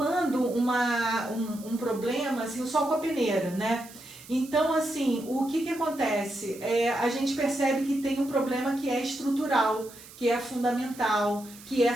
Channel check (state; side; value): noise; right; hiss, 19 dB below the sound